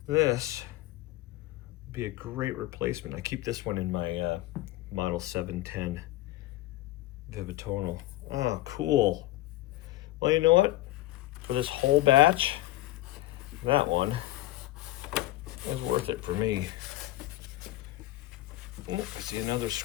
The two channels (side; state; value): right; quieter; 16.3 dB